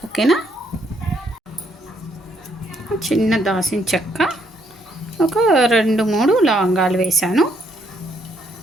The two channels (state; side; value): normal; both; correlation 0.71